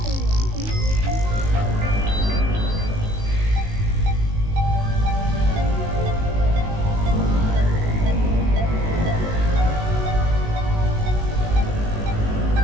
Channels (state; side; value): late; left; 19 ms